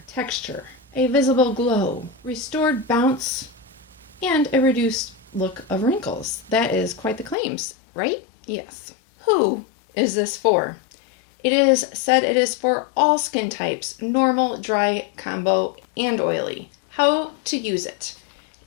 texture, a visible glow, restored bounce, and a reduced look of wrinkles. That is quite the claims, right? Yes. Who is this for? It is said it is for all skin types, normal, dry, combo, and oily. How to use it?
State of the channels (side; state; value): right; drops out; at 7.4 s